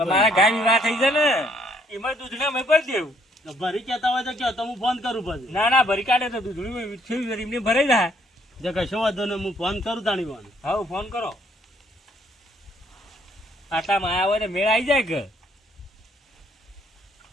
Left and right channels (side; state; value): both; normal; correlation 0.67